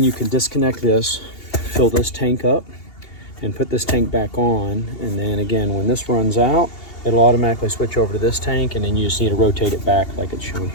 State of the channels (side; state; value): right; late; 2.8 ms